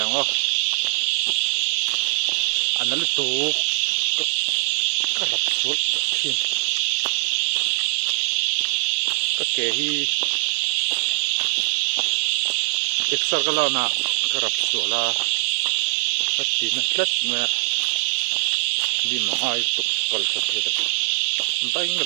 o an na lu tu ka rap sul thin ka ke hi exer ka la na ka rap sul la ka ti na tlat me di ma ai tu kal sa the bai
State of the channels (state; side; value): silent; left; digital silence